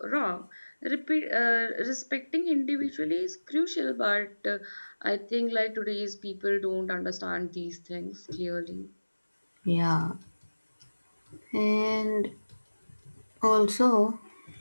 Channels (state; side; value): inverted; both; correlation -1.00